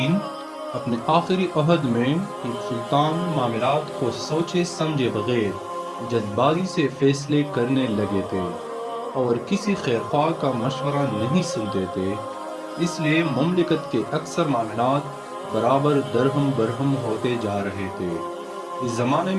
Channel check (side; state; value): both; identical; correlation 1.00